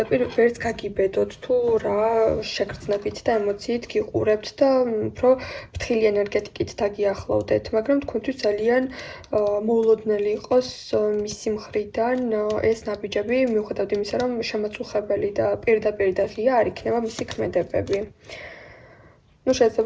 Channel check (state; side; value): identical; both; correlation 1.00